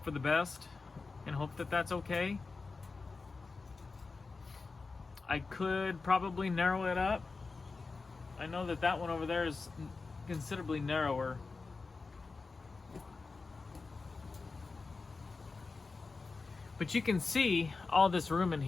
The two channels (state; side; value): quieter; right; 4.1 dB